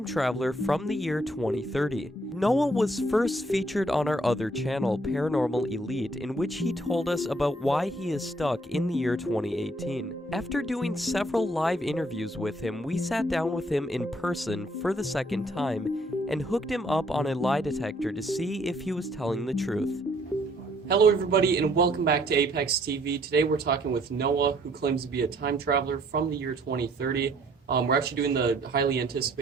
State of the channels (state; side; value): normal; both; correlation 0.64